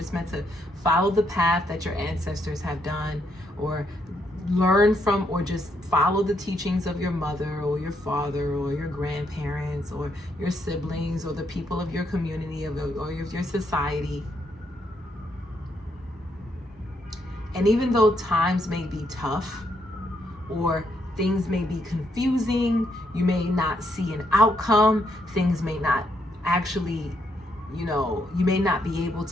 meant to follow the path that your ancestors have done, or learn from, or just follow the teachings of your mother or your father or your grandparents or your siblings or the people of your community or your society. And even though times may be tough or things may be confusing, you may not see an outcome, things may not actually, you may not be able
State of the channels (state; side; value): normal; both; correlation 0.76